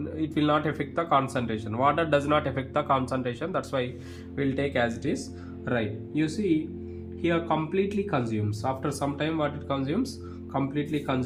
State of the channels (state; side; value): identical; both; correlation 1.00